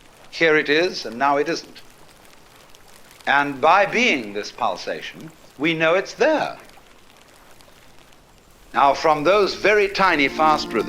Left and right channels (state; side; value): identical; both; correlation 1.00